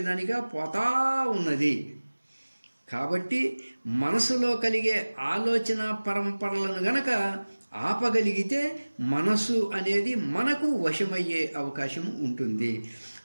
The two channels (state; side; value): inverted; both; correlation -1.00